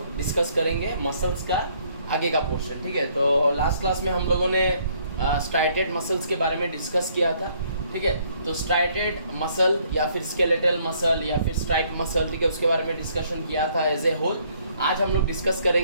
डिस्कस करेंगे मसल्स का आगे का पोर्शन, ठीक है। तो लास्ट क्लास में हम लोगों ने स्ट्राइटेड मसल्स के बारे में डिस्कस किया था, ठीक है। तो स्ट्राइटेड मसल या फिर स्केलेटल मसल या फिर स्ट्राइक मसल, ठीक है, उसके बारे में डिस्कशन किया था एज ए होल। आज हम लोग डिस्कस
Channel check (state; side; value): inverted; both; correlation -0.65